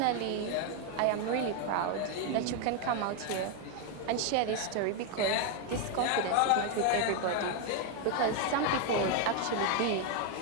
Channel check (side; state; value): both; different; correlation 0.01